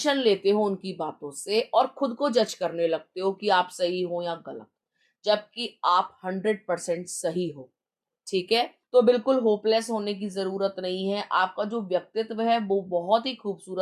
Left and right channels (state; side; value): identical; both; correlation 1.00